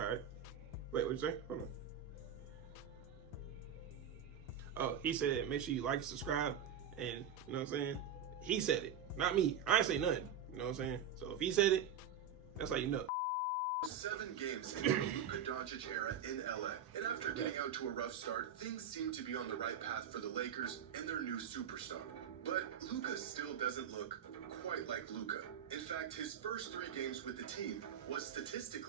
Wait, what'd you say? Hold on. Oh, he said make sure you like, subscribe, and you know what I'm saying? He said it, not me. I ain't say nothing. You know what I'm saying? So if he said it, that's how you know. 7 games into the Luka Doncic era in LA. And after getting out to a rough start, things seem to be on the right path for the Lakers and their new superstar. But Luka still doesn't look quite like Luka. In fact, his first 3 games with the team was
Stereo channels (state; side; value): quieter; left; 7.5 dB